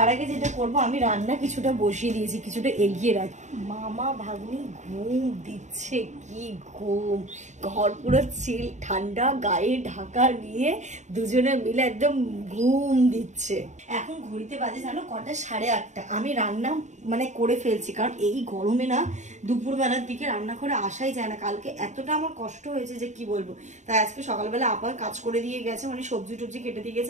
আগে যেটা করবো, আমি রান্না কিছুটা বসিয়ে দিয়েছি, কিছুটা এগিয়ে রাখি। মামা ভাগ্নি ঘুম দিচ্ছে, কি ঘুম! ঘর পুরো চিল ঠান্ডা, গায়ে ঢাকা নিয়ে দুজনে মিলে একদম ঘুম দিচ্ছে। এখন ঘড়িতে বাজে জানো কটা, 8:30। আমি রান্না করে ফেলছি, কারণ এই গরমে না দুপুরবেলার দিকে রান্না করে আসাই যায় না। কালকে এতটা আমার কষ্ট হয়েছে যে কি বলবো। তাই আজকে সকালবেলা আবার কাজ করে দিয়ে গেছে, সবজি টবজি কেটে দিয়ে গেছে,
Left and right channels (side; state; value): left; late; 0.34 ms